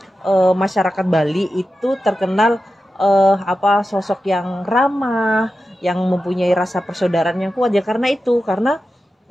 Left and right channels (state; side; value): normal; both; correlation 0.91